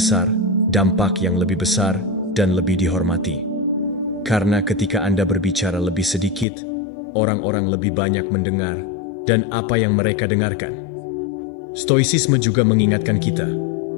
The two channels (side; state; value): right; drops out; at 6.5 s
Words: dampak yang lebih besar, dan lebih dihormati. Karena ketika Anda berbicara lebih sedikit, orang-orang lebih banyak mendengar, dan apa yang mereka dengarkan. Stoicisme juga mengingatkan kita.